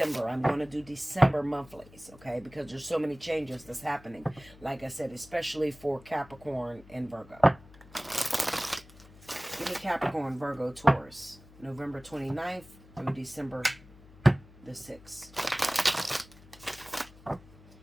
I'm going to do December monthlies, okay? Because there's so many changes that's happening. Like I said, especially for Capricorn and Virgo. Give me Capricorn, Virgo, Taurus. November 29th through December the 6th.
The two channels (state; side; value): noise; left; hum, 22 dB below the sound